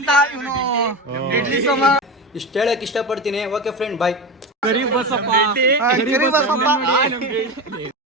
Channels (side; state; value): both; normal; correlation 0.23